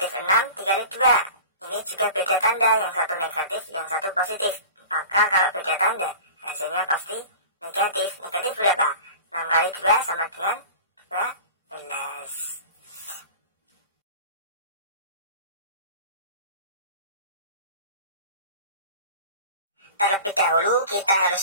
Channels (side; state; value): both; inverted; correlation -0.39